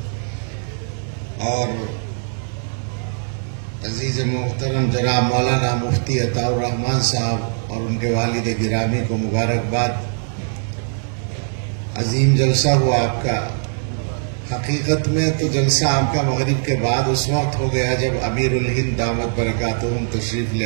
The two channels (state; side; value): silent; left; digital silence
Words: اور عزیز محترم جناب مولانا مفتی عطاء الرحمان صاحب اور ان کے والد گرامی کو مبارکباد. عظیم جلسہ ہوا آپ کا. حقیقت میں تو جلسہ آپ کا مغرب کے بعد اس وقت ہو گیا جب امیر الہند دامت برکاتہم تشریف